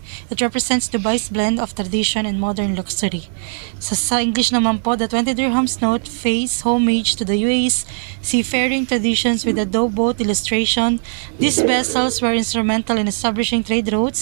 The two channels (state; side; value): silent; left; digital silence